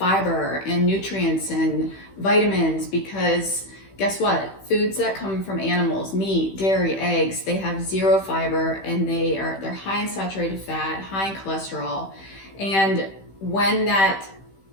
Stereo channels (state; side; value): late; right; 15 ms